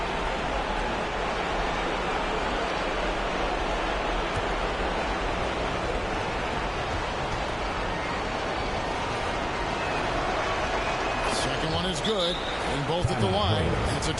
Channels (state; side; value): identical; both; correlation 1.00